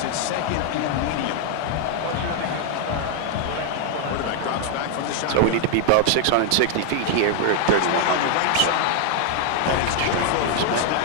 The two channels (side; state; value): both; different; correlation 0.00